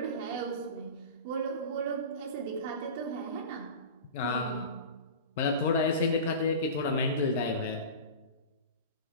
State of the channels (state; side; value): inverted; both; correlation -0.31